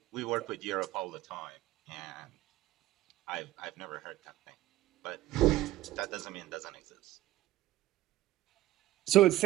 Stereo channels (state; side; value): quieter; left; 15.7 dB